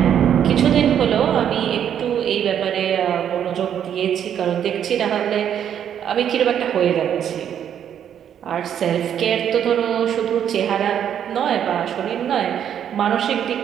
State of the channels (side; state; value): left; quieter; 9.3 dB